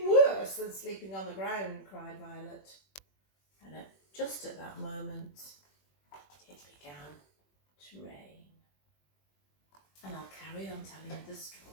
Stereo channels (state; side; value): late; right; 21 ms